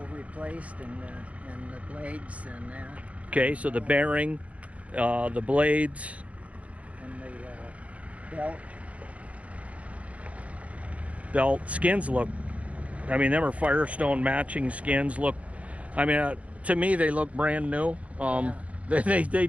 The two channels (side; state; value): left; late; 0.066 ms